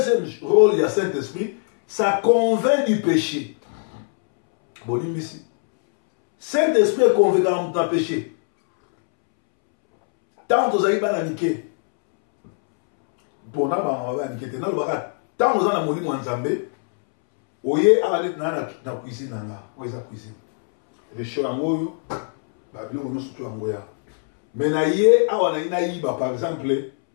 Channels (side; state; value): right; silent; 64 dB below the other